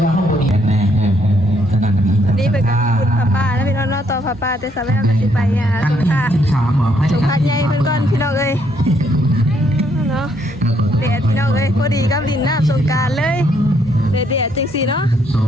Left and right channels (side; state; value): both; normal; correlation 0.71